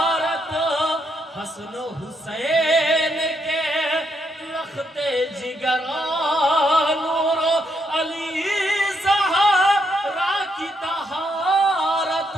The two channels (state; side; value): normal; both; correlation 0.77